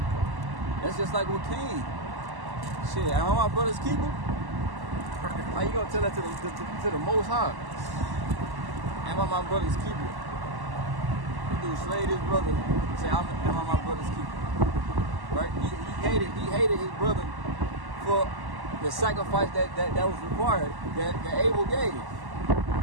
That's just like with Cain. Shit, am I my brother's keeper? How you gonna tell that to the Most High? Am I my brother's keeper? He dude slayed his brother. Say, am I my brother's keeper? Right? He hated his brother for the sacrifice that was required, that Abel gave.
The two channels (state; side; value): late; left; 1.1 ms